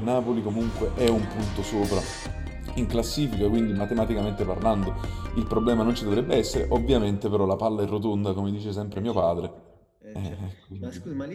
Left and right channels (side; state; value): both; identical; correlation 1.00